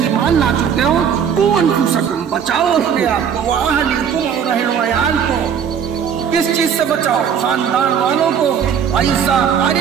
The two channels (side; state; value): left; quieter; 7.7 dB